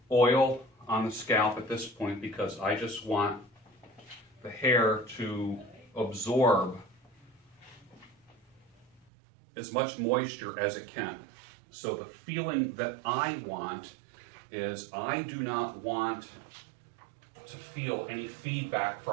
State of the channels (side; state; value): left; drops out; at 9.0 s